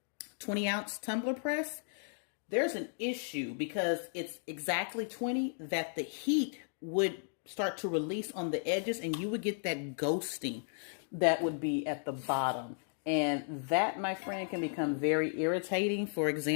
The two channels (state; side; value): silent; right; digital silence